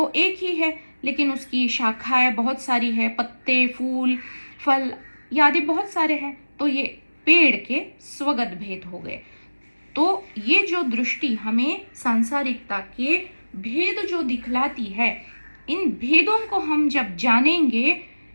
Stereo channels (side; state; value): both; inverted; correlation -1.00